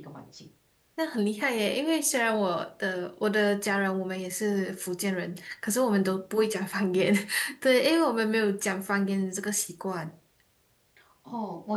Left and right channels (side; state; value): both; identical; correlation 1.00